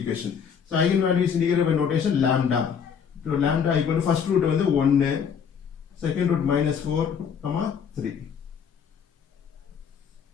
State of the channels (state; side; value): quieter; right; 7.1 dB